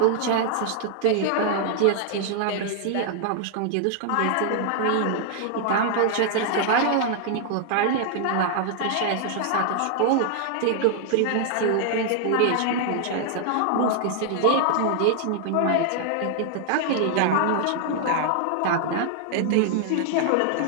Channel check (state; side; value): different; both; correlation 0.00